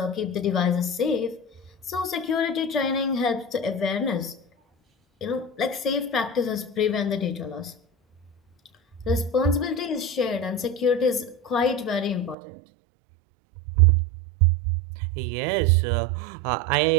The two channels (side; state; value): left; drops out; at 12.4 s